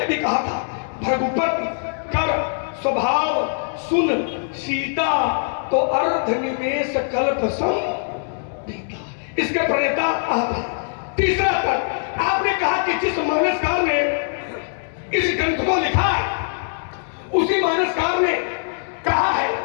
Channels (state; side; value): silent; right; digital silence